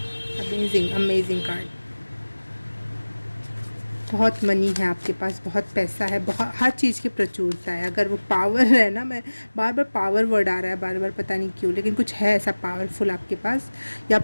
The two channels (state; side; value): inverted; both; correlation -1.00